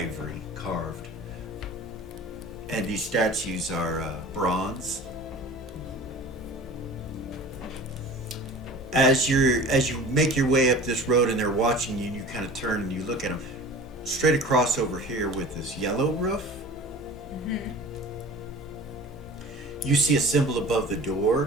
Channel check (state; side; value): normal; both; correlation 0.40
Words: carved. And these statues are bronze. As you make your way up this road and they're watching you, and you kind of turn and you look at them, straight across over here with this yellow roof, you see a symbol above the